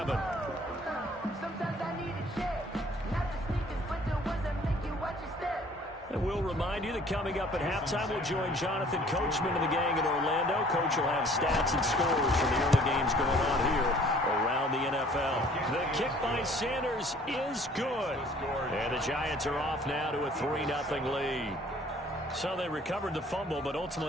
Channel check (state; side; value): normal; both; correlation 0.55